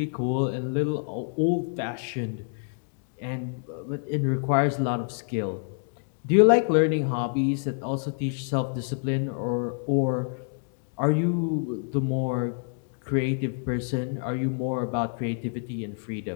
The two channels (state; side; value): silent; right; 60 dB below the other